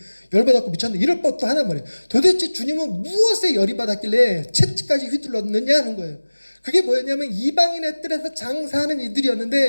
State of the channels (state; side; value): inverted; both; correlation -1.00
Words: 열받았고 미쳤네. 이럴 법도 하나 말이에요. 도대체 주님은 무엇에 열이 받았길래 채찍까지 휘둘렀느냐 하는 거예요. 그게 뭐였냐면 이방인의 뜰에서 장사하는